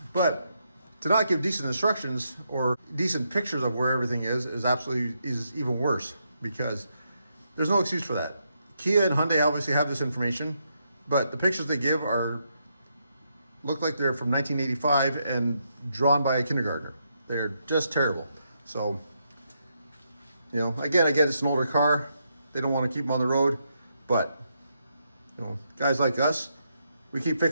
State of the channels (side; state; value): both; inverted; correlation -0.80